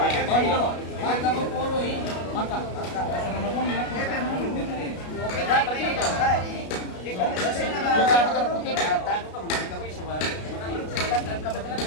dolo? Maka mo puro eh. Maka. Sana na pong nila. Yo kaya pakara puti.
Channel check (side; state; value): right; late; 33 ms